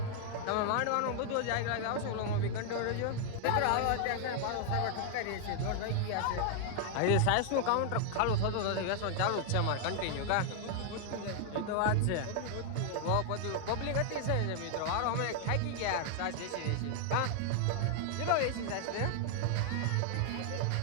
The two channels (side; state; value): both; different; correlation 0.00